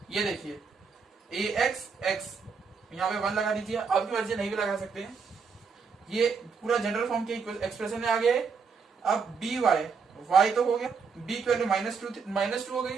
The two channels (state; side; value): quieter; left; 5.4 dB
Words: ये देखिए ax x, यहाँ पे 1 लगा दीजिए, आपकी मर्जी नहीं भी लगा सकते हैं। ये पूरा जनरल फॉर्म के एक्सप्रेशन में आ गया है। अब dy, y तो हो गया, b की वैल्यू -2 हो गई,